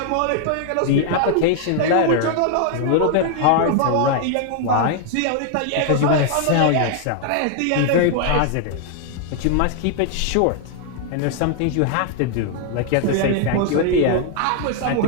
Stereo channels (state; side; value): different; both; correlation 0.00